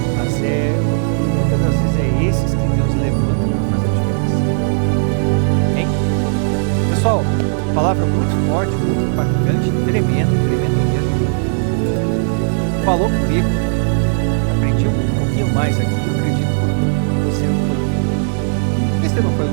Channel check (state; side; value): silent; left; digital silence